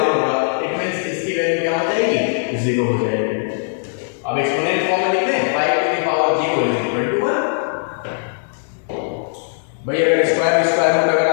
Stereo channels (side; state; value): right; silent; 66 dB below the other